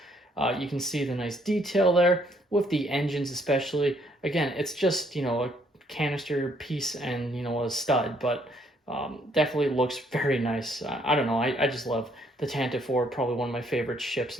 You can see the nice detail there with the engines especially. Again, it's just, a canister piece and, a stud, but definitely looks very nice. I don't know, I just love the Tantive IV, probably one of my favorite ships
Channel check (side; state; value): both; normal; correlation 0.67